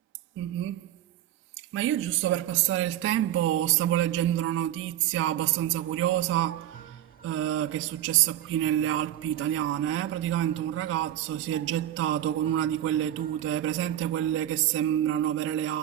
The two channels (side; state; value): left; quieter; 12.3 dB